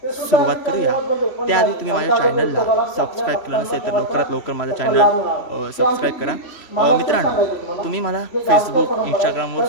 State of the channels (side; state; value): right; late; 3.0 ms